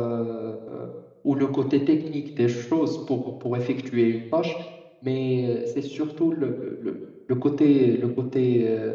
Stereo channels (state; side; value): identical; both; correlation 1.00